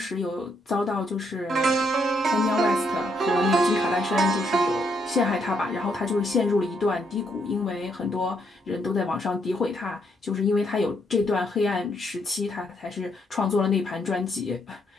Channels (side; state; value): both; normal; correlation 0.74